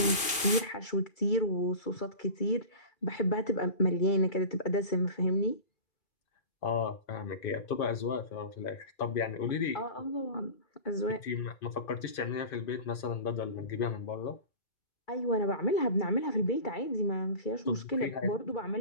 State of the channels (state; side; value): late; right; 2.5 ms